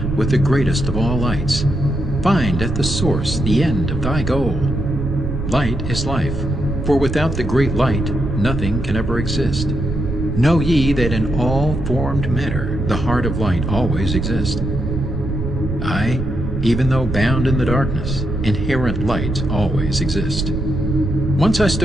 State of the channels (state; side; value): noise; right; rumble, 5 dB below the sound